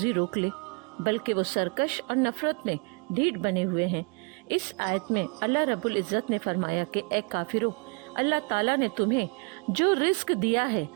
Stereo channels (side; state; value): left; quieter; 34.8 dB